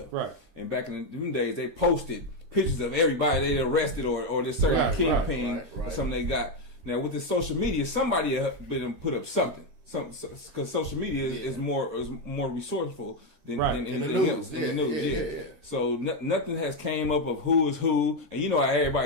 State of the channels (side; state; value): left; late; 13 ms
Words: Right. And back in them days, they posted pictures of everybody they arrested or this certain kingpin or something they got. Now with the social media, somebody been put up something. Because social media is more resourceful than anything the news. else. In the news, yeah. So nothing has came up of who is who, and you know how